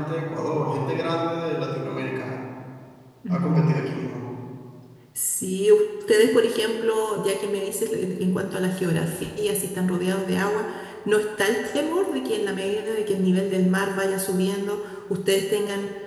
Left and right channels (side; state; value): both; identical; correlation 1.00